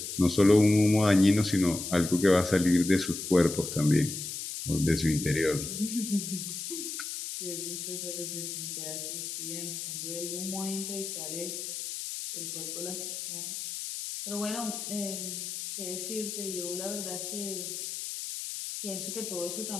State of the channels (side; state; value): left; noise; hiss, 6 dB below the sound